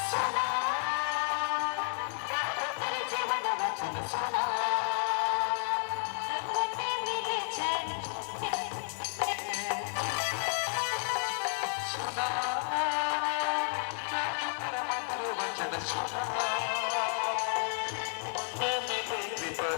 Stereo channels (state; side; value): silent; right; 56 dB below the other